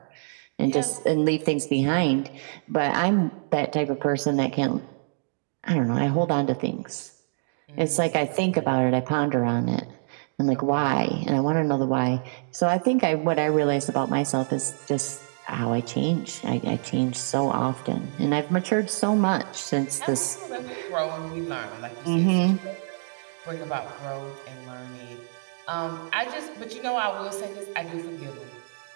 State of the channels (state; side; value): silent; left; digital silence